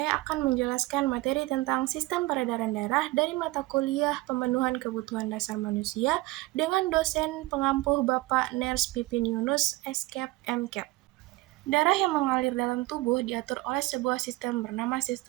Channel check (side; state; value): left; quieter; 20.6 dB